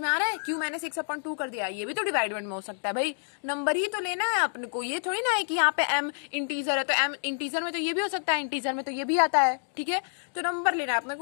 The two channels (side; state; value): right; silent; digital silence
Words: आ रहा है क्यों मैंने 6/2 कर दिया? ये भी तो डिवाइडमेंट में हो सकता है भाई, नंबर ही तो लेना है अपने को, ये थोड़ी ना है कि यहाँ पे m इंटीजर है तो m इंटीजर में तो ये भी हो सकता है, इंटीजर में तो ये भी आता है। ठीक है, तो नंबर लेना है अपने